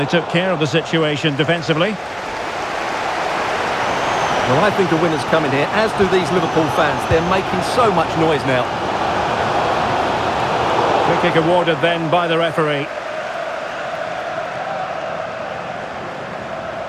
took care of the situation defensively. Well, I think the winner's coming here, as do these Liverpool fans. They're making so much noise now. Free kick awarded then by the referee.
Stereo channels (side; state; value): both; identical; correlation 1.00